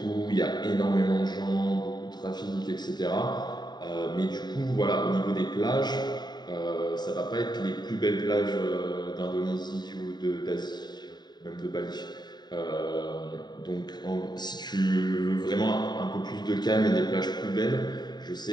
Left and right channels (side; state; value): right; late; 0.20 ms